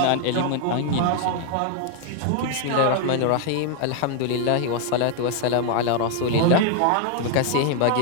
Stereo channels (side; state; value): both; different; correlation 0.00